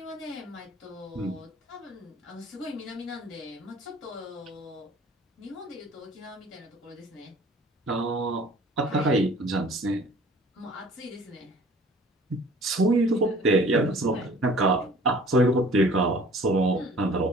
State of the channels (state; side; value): normal; both; correlation 0.50